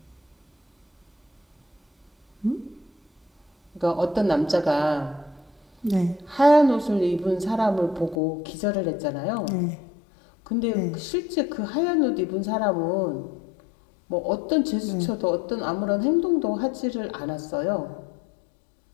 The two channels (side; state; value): right; drops out; at 8.2 s